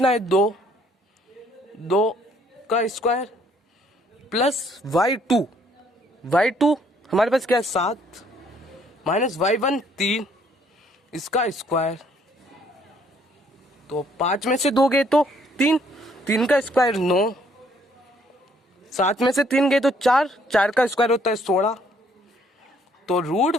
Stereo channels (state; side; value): normal; both; correlation 0.65